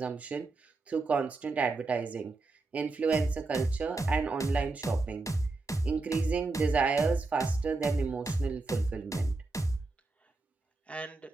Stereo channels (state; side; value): quieter; left; 3.4 dB